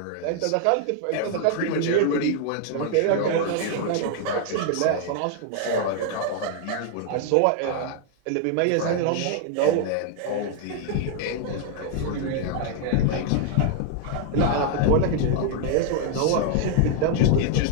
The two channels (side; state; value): both; different; correlation 0.00